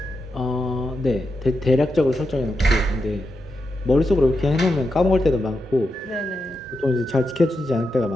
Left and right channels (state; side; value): normal; both; correlation 0.87